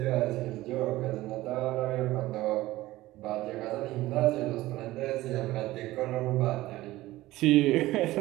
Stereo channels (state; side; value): quieter; left; 17.2 dB